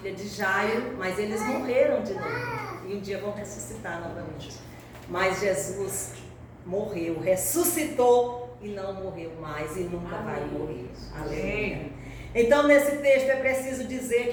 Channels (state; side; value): identical; both; correlation 1.00